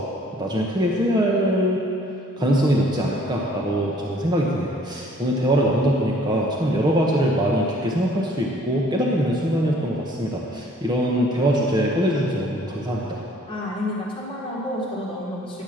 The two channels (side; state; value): both; normal; correlation 0.58